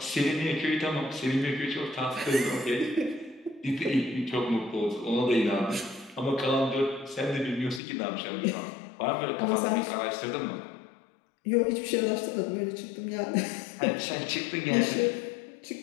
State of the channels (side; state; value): right; drops out; at 7.8 s